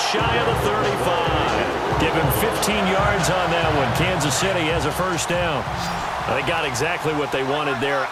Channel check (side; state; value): both; identical; correlation 1.00